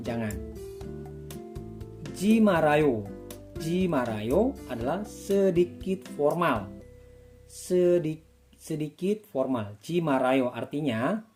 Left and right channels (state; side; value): identical; both; correlation 1.00